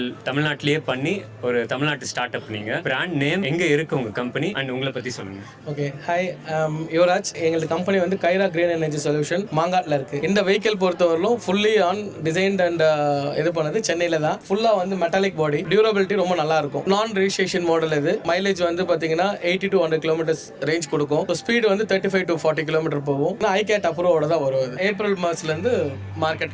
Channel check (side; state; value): both; identical; correlation 1.00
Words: தமிழ்நாட்டிலேயே பண்ணி ஒரு தமிழ்நாட்டு ஸ்டார்ட் அப். நீங்கள் பிராண்ட் நேம் எங்கே இருக்குது உங்கள் கம்பெனி அண்ட் உங்களை பற்றி சொல்லுங்கள். Okay, hi, Yuvaraj. எங்களது கம்பெனி வந்து கைரா கிரீன் எனர்ஜி சொல்யூஷன் மாங்காட்டில் இருக்குது. இந்த வெஹிக்கிள் பொறுத்தவரையிலும் ஃபுல்லி ஆன் டிசைன்ட் அண்ட் இது பண்ணது சென்னையில் தான். ஃபுல்லாக வந்து மெட்டாலிக் பாடி, டியூரபிலிட்டி ரொம்ப நல்லா இருக்கும். நான் ரிஜிஸ்ட்ரேஷன் மாடல் இது. மைலேஜ் வந்து பார்த்தீங்கன்னா 80 to 100 kilometers ரேஞ்ச் கொடுக்கும். ஸ்பீடு வந்து 35 to 40 km போகும். ஐகேட் அப்ரூவோட தான் வரும். ஏப்ரல் மாதத்துலேருந்து